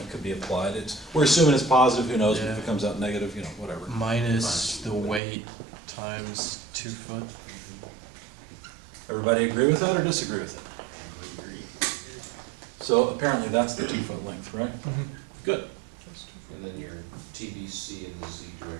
could be applied. We're assuming it's positive, who knows if Yeah. it comes out negative, you know, whatever. minus the weight times 2 foot. Everybody agree with that or disagree with it? So apparently that's the 2 foot length, right? Good. And then your TBC in the Z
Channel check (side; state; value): left; drops out; at 5.2 s